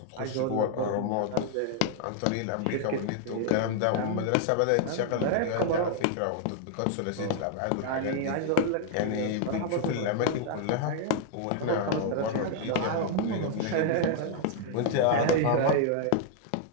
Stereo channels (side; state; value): both; different; correlation 0.00